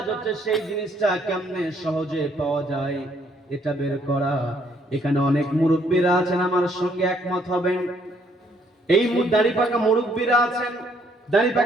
হচ্ছে সেই জিনিসটা কেমনে সহজে পাওয়া যায় এটা বের করা। এখানে অনেক মুরব্বীরা আছেন, আমার সঙ্গে একমত হবেন। এই দাড়ি পাকা মুরব্বীরা আছেন, দাড়ি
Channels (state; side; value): normal; both; correlation 0.67